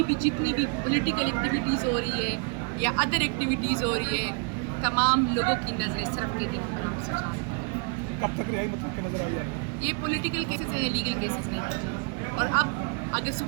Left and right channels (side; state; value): left; quieter; 34.8 dB